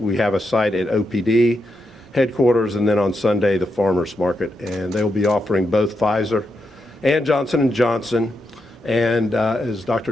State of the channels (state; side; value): normal; both; correlation 0.84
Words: have a site at OPD headquarters, and then on Sunday, the Farmers Market. And they will be offering both Pfizer and Johnson & Johnson. And as